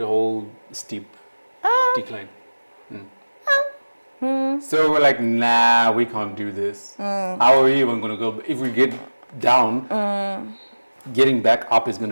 steep decline. So we're like, nah, we can't do this. How are we even gonna go? If we get down, getting back up is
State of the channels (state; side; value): inverted; both; correlation -1.00